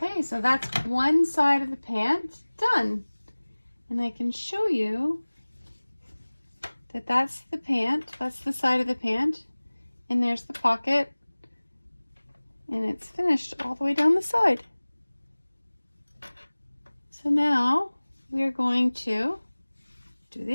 Okay, so that's one side of the pant done. And I can show you that that's the pant, that's the side of the pant, and there's the pocket, and it's finished all the way down the side. So now we're going to do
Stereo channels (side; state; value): both; inverted; correlation -1.00